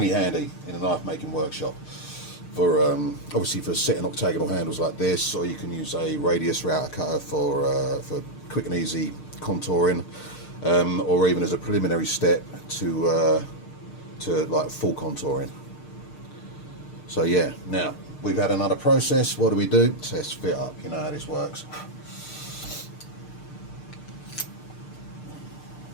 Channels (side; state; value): right; late; 6.6 ms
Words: handy in a knife making workshop. For obviously for setting octagonal handles like this, or you can use a radius router cutter for quick and easy contouring. Or even as a preliminary step to like full contouring. So yeah, now we've had another process. What do? Test fit up. You know how this works.